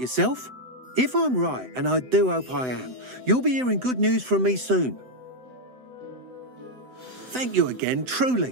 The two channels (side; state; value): left; late; 7.9 ms